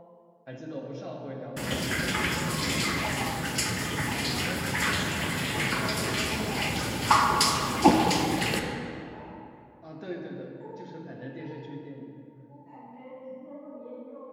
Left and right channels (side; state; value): both; identical; correlation 1.00